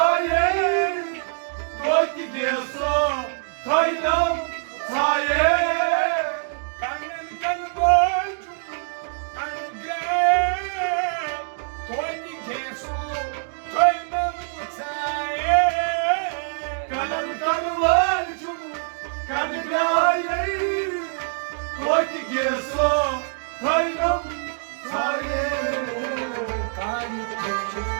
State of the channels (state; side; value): silent; left; digital silence